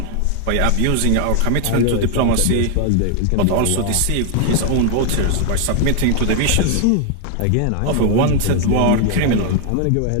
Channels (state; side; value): different; both; correlation 0.00